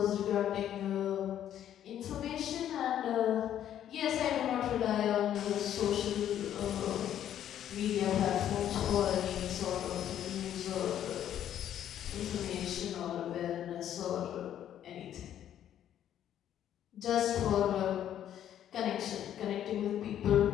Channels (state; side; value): quieter; right; 10.7 dB